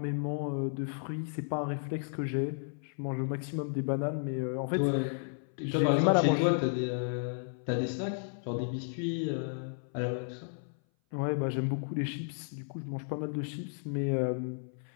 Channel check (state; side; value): silent; right; 56 dB below the other